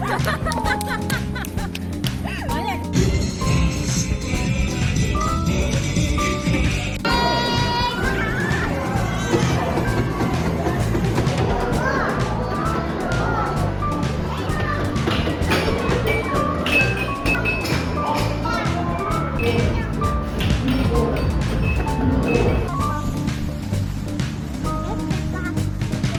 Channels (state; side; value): identical; both; correlation 1.00